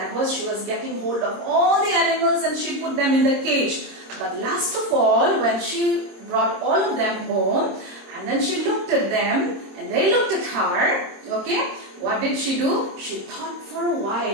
was, she was getting hold of all the animals and she put them in the cage. But last of all, when she brought all of them home, and then she looked at them and they looked at her, okay, what did she do? She thought for a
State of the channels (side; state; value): left; late; 26 ms